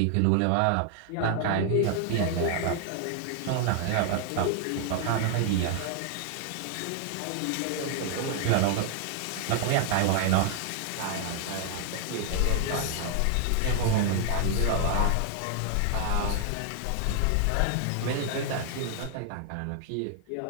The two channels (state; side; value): different; both; correlation 0.00